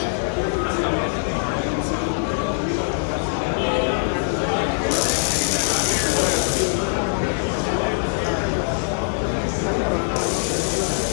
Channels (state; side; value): silent; right; 61 dB below the other